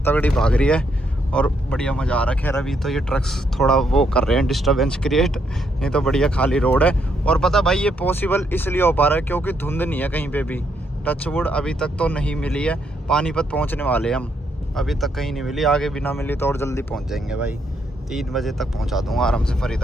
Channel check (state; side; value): normal; both; correlation 0.75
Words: भाग रही है और बढ़िया मज़ा आ रखा है। अभी तो ये ट्रक्स थोड़ा वो कर रहे हैं डिस्टर्बेंस क्रिएट, नहीं तो बढ़िया खाली रोड है। और पता भाई ये पॉसिबल इसलिए हो पा रहा है क्योंकि धुंध नहीं है कहीं पे भी, टचवुड अभी तक तो नहीं मिली है। पानीपत पहुंचने वाले हम, अभी तक कहीं नहीं मिली, आगे भी ना मिली तो और जल्दी पहुंच जाएंगे भाई। 3 बजे तक पहुंचा दूंगा आराम से